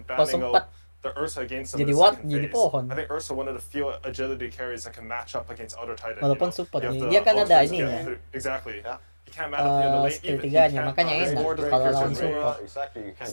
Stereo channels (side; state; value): both; inverted; correlation -1.00